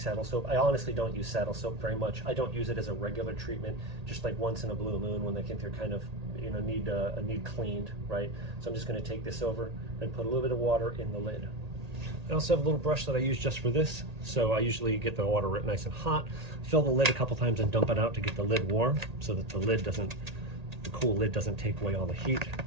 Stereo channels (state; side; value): late; left; 1.8 ms